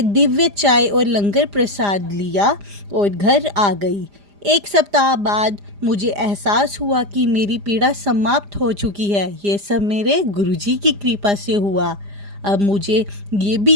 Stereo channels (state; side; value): late; left; 4.9 ms